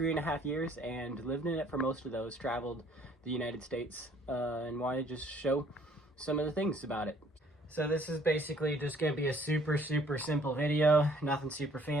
years and lived in it for most of those, traveled the United States, and wanted to just show some of the things about it. So this is basically just going to be a super simple video, nothing super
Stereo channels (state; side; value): normal; both; correlation 0.60